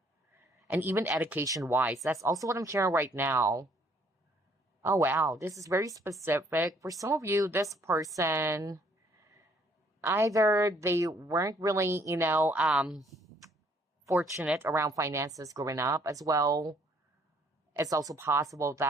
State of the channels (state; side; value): normal; both; correlation 0.64